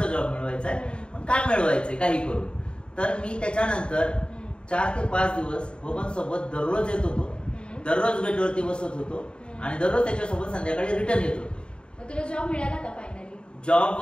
जॉब मिळवायचा आहे, पण काय मिळवायचंय काही करून. तर मी त्याच्यानंतर 4 ते 5 दिवस बबन सोबत दररोज येत होतो, दररोज गेटवरती बसत होतो आणि दररोज त्याच्यासोबत संध्याकाळी रिटर्न येत होतो. तुला जॉब मिळाला का फायनली? जॉब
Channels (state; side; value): late; right; 0.053 ms